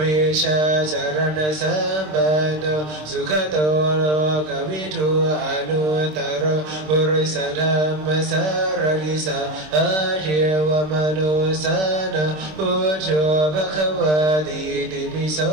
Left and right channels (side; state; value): left; late; 26 ms